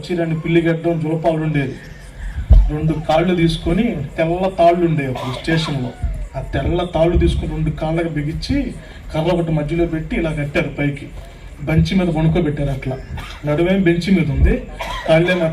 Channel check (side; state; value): both; identical; correlation 1.00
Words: 2 పిల్లిగడ్డం జులపాలు ఉండేది. 2 కాళ్ళు తీసుకొని, తెల్ల తాళ్ళు ఉండేవి అప్పుడు స్టేషన్లో. ఆ తెల్ల తాళ్ళు తీసుకొని 2 కాళ్ళకి బిగించి కర్ర ఒకటి మధ్యలో పెట్టి ఇలా కట్టారు పైకి. బెంచి మీద వణుకోబెట్టారు. అట్లా నడువేం బెంచి మీద ఉంది, కాళ్ళేమో